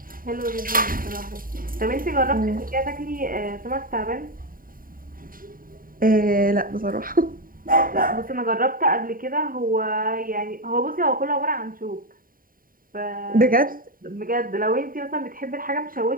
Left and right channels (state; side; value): late; left; 0.41 ms